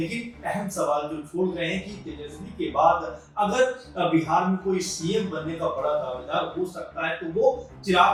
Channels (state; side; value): identical; both; correlation 1.00